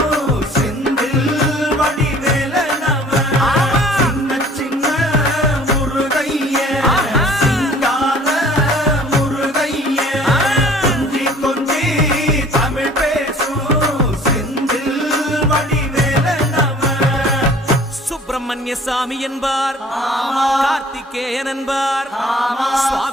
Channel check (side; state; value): both; normal; correlation 0.51